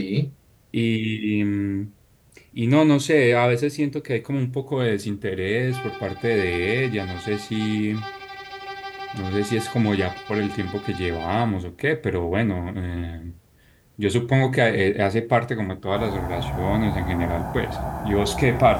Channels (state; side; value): identical; both; correlation 1.00